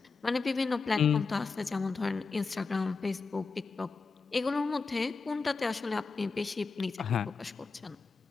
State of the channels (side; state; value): right; quieter; 4.5 dB